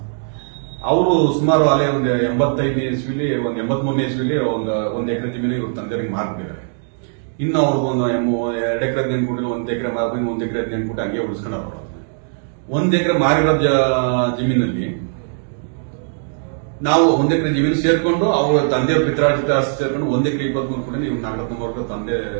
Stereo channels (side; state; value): left; silent; digital silence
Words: ಅವರು ಸುಮಾರು ಅಲ್ಲೇ ಒಂದು 85ನೇ ಇಸ್ವಿಲಿ, ಒಂದು 83ನೇ ಇಸ್ವಿಲಿ ಒಂದು ಎಕರೆ ಜಮೀನು ಇವ್ರ ತಂದೆಯವರಿಗೆ ಮಾರ್ಬಿಟ್ಟಿದ್ದಾರೆ. ಇನ್ನು ಅವ್ರಿಗೆ 2 ಎಕರೆ ನೆನ್ಕೊಟ್ಟಿಲ್ಲ, 1 ಎಕರೆ ಮಾರ್ಬಿಟ್ಟು 1 ಎಕರೆ ನೆನ್ಕೊಟ್ಟು ಹಂಗೆ ಉಳಿಸ್ಕೊಂಡವ್ರು. 1 ಎಕರೆ ಮಾರಿರೋ ಜಮೀನಲ್ಲಿ ನಾವು 1 ಎಕರೆ ಜಮೀನು ಸೇರ್ಕೊಂಡು ಅವ್ರ ತಂದೆಯವ್ರ ಪಿತ್ರಾರ್ಜಿತ ಆಸ್ತಿ ಸೇರ್ಕೊಂಡು 1 ಎಕರೆ 23 ಕೂಡ ಇವ್ರು ನಾಗರತ್ನವ್ರ ತಂದೆ